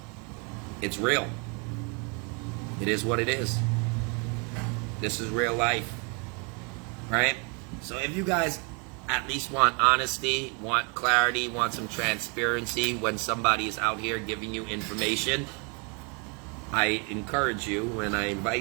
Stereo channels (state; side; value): quieter; left; 33.9 dB